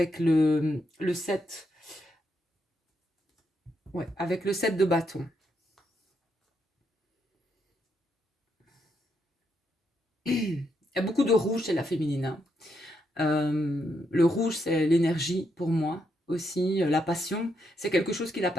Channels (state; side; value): normal; both; correlation 0.79